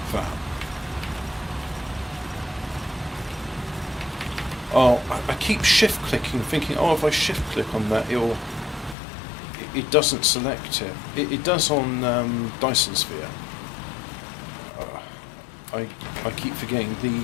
that. Oh, I keep shift clicking, thinking, oh, if I shift click on that, it doesn't select it. It does on Dyson Sphere. I keep forgetting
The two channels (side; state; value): right; drops out; at 9.0 s